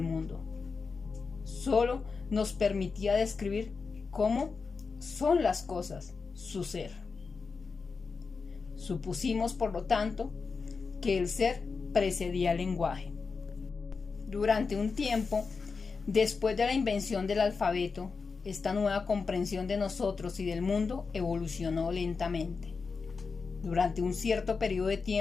mundo. Solo nos permitía describir cómo son las cosas, su ser. Supusimos, por lo tanto, que el ser precedía al lenguaje. Durante un tiempo, después de la invención del alfabeto, esta nueva comprensión de nosotros y del mundo evolucionó lentamente. Durante un cierto periodo de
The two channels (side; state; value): right; quieter; 4.8 dB